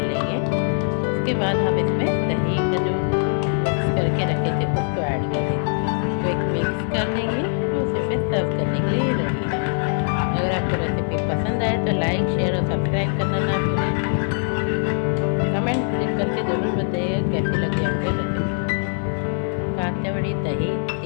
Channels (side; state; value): right; silent; digital silence